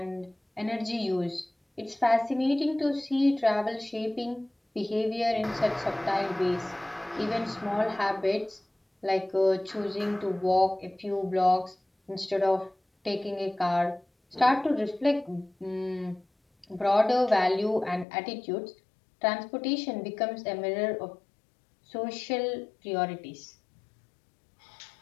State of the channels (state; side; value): drops out; right; at 18.1 s